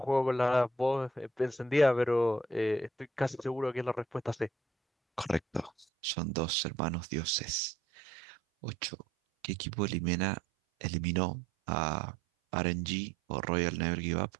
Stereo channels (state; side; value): drops out; left; at 5.9 s